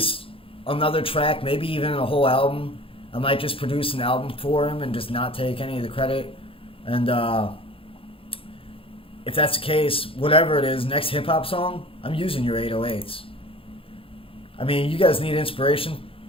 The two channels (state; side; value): late; right; 0.27 ms